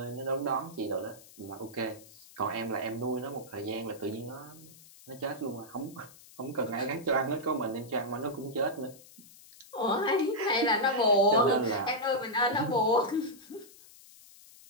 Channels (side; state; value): left; noise; hiss, 22 dB below the sound